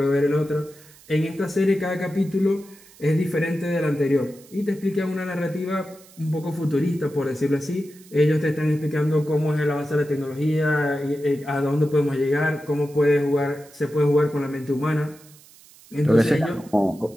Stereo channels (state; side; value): noise; right; hiss, 24 dB below the sound